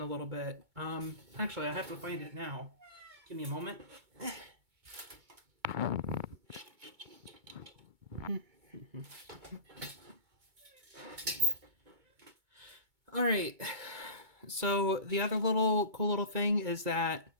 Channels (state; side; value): late; left; 2.2 ms